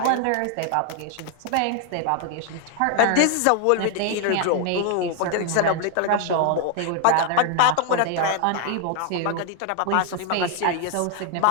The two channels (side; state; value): both; different; correlation 0.00